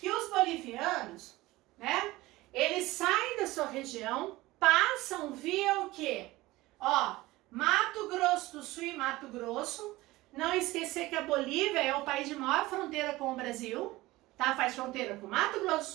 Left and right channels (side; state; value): left; quieter; 19.0 dB